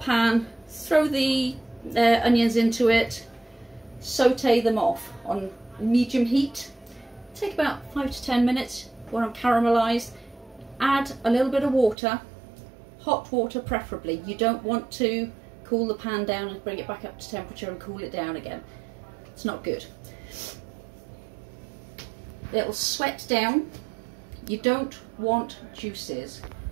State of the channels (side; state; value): left; drops out; at 12.0 s